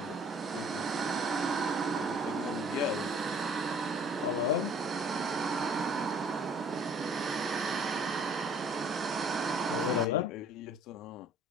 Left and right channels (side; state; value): both; normal; correlation 0.55